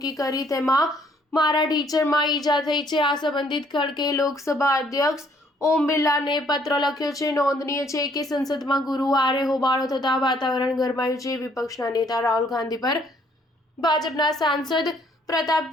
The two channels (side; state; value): both; normal; correlation 0.64